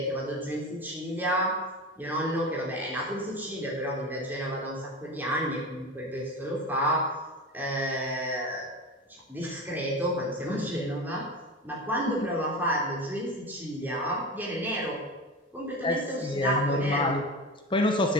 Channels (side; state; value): both; normal; correlation 0.27